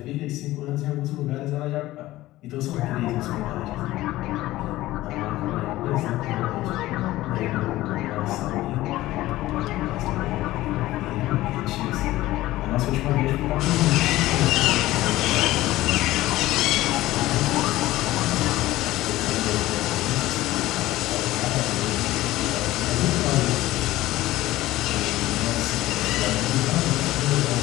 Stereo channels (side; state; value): right; quieter; 16.6 dB